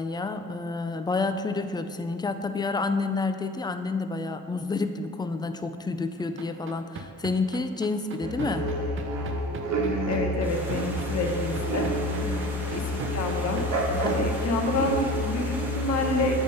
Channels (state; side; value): normal; both; correlation 0.42